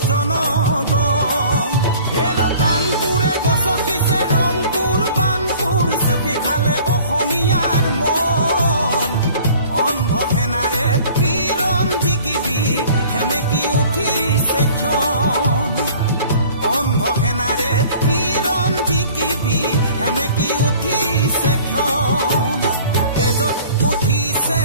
জনগণ হেলো কানপুৰে গছকিছে ৰংপুৰ বানপুৰ চেপি খালে অসমীয়াৰ মন অন্ধ সেনাৰে কিৰণ জিকিবি সেমেকি উঠিছে ক্ষণ অন্ধ সেনাৰে কিৰণ জিকিবি সেমেকি উঠি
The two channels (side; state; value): both; inverted; correlation -0.49